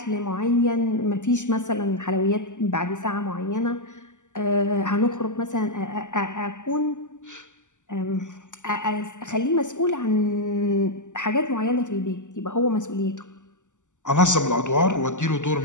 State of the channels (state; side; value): late; right; 0.86 ms